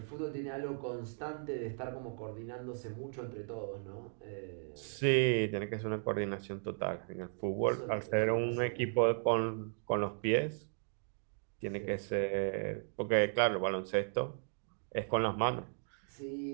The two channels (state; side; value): silent; left; digital silence